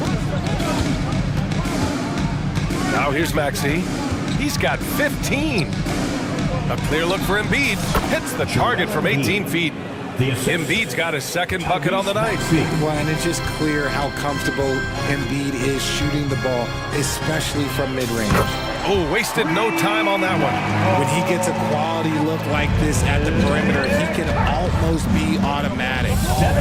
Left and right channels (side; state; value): both; identical; correlation 1.00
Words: Now here's Maxey. He's got 15. A clear look for Embiid. Hits the target from 18 feet. Embiid's got his second bucket on the night. Well, and it's just clear how comfortable Embiid is shooting the ball, especially from mid-range. Oh, wasted no time on that one. When he gets a quality look like this at the perimeter, he can almost be automatic.